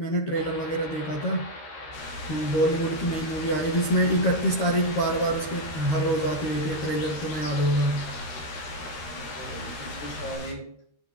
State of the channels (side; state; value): right; late; 13 ms